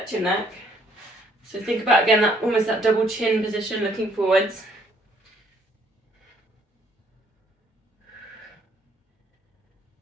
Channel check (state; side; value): normal; both; correlation 0.65